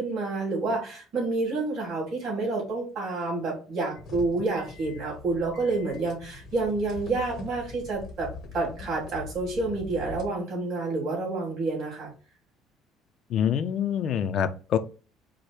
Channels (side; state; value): both; normal; correlation 0.54